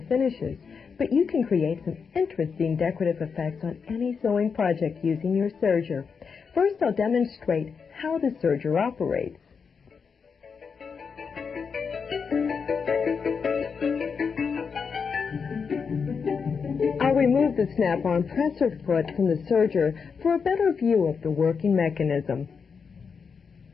finishes, but you can create some interesting decorative effects on any sewing project using your serger. First, I'll demonstrate how the serger operates. I'll remove the snap-on presser foot from the serger for a better view of the working mechanism.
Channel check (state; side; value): quieter; right; 5.8 dB